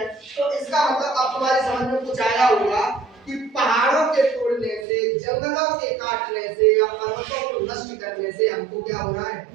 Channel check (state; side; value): drops out; left; at 4.9 s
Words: तो इसका मतलब अब तुम्हारी समझ में कुछ आया होगा कि पहाड़ों के तोड़ने से, जंगलों के काटने से या पर्वतों को नष्ट करने से हमको क्या हो रहा है।